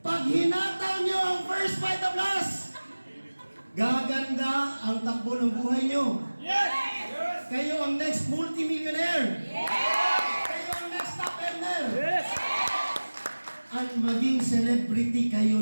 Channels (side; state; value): both; inverted; correlation -1.00